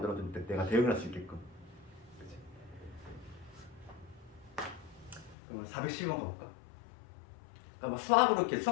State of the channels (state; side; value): drops out; right; at 5.4 s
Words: 내가 대응을 할 수 있게끔. 그치? 그럼 412번 가볼까? 그러니까 뭐 수학으로 이렇게